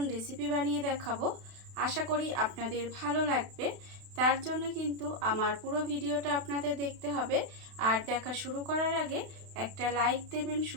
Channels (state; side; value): late; left; 32 ms